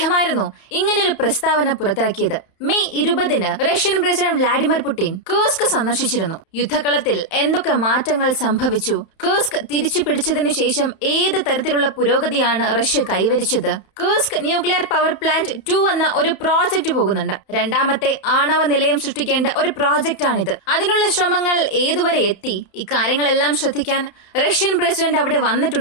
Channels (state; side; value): late; right; 31 ms